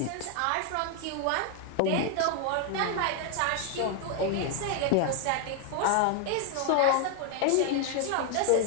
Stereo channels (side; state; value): both; different; correlation 0.00